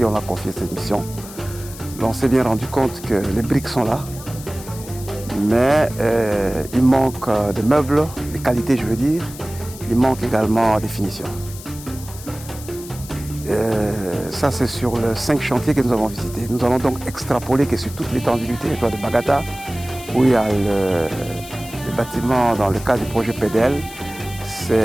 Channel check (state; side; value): noise; left; hiss, 15 dB below the sound